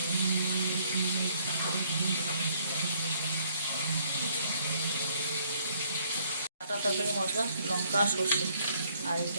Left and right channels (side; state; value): both; inverted; correlation -0.65